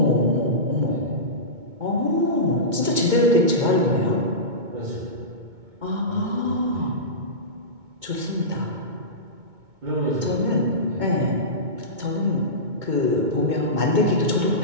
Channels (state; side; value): late; left; 2.2 ms